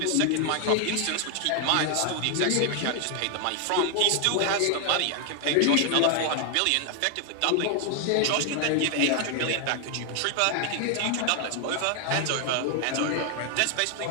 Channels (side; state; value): both; different; correlation 0.00